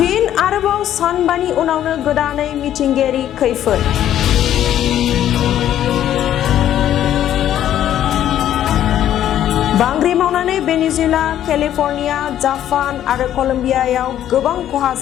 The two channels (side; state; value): right; quieter; 11.4 dB